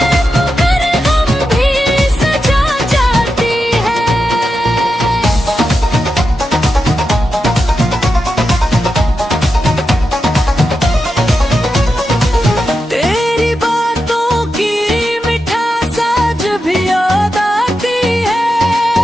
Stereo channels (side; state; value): both; normal; correlation 0.88